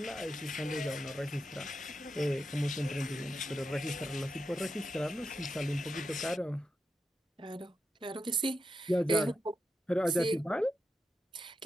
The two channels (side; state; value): both; normal; correlation 0.86